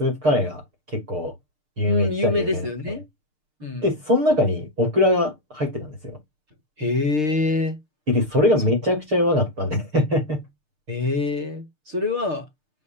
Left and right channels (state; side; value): late; left; 6.6 ms